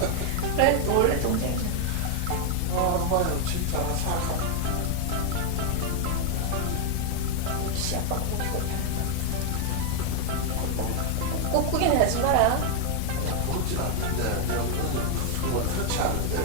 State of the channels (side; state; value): both; different; correlation 0.00